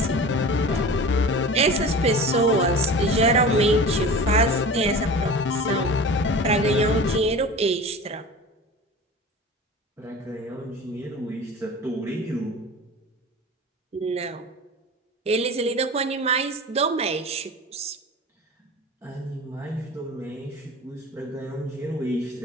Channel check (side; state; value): both; normal; correlation 0.36